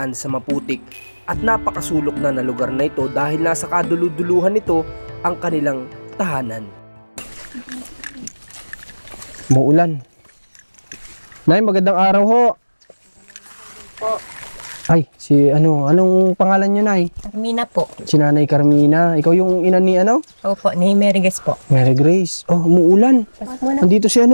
sa maputik at napakasulok na lugar na ito dahil nasa kaduluduluhan nito ang kanilang tahanan. Muulan. Nay, magandang araw ho. Po. Ay, anong pangalan nyo, Nay? Carmina po. Si Nanay Carmina. Ikaw yung ina ni Opo, ni Meriges po. Mary Grace. Oh, umuulan. Nandito si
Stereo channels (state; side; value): inverted; both; correlation -1.00